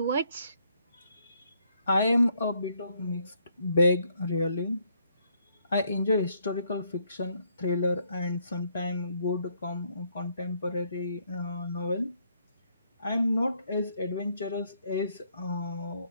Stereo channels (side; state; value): both; inverted; correlation -0.70